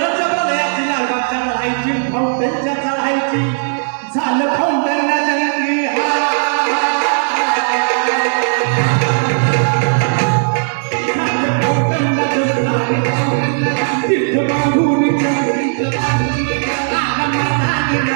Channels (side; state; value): left; silent; 68 dB below the other